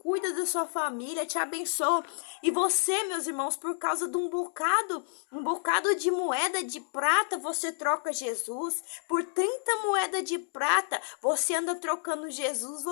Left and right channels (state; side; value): silent; right; digital silence